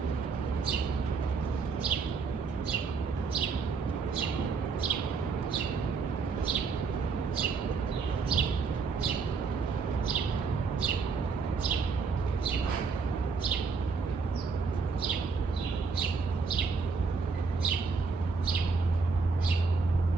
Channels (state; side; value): quieter; left; 4.8 dB